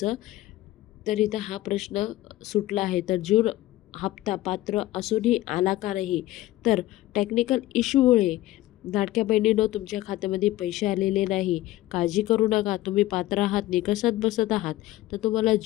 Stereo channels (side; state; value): right; quieter; 16.2 dB